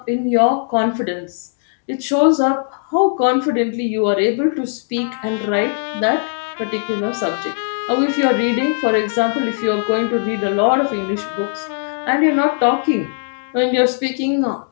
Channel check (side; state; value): right; silent; digital silence